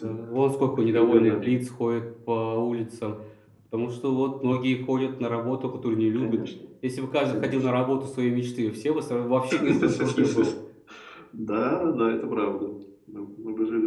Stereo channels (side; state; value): both; identical; correlation 1.00